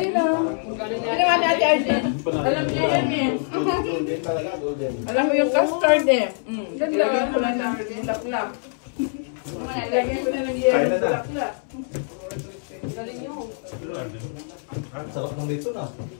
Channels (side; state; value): right; silent; 63 dB below the other